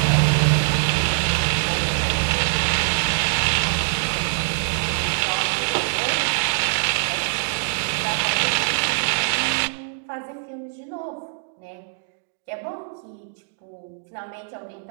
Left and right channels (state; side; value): silent; left; digital silence